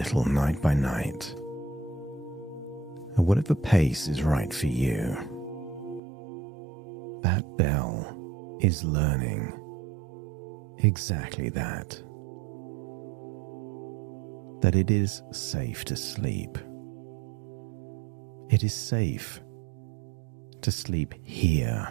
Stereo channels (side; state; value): left; drops out; at 6.0 s